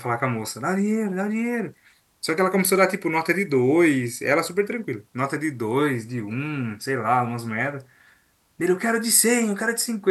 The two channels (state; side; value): identical; both; correlation 1.00